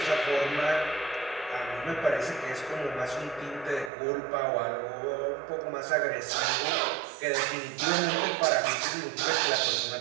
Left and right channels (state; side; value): drops out; left; at 3.9 s